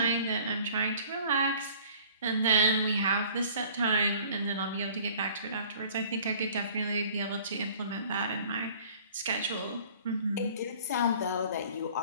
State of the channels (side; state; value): both; inverted; correlation -0.51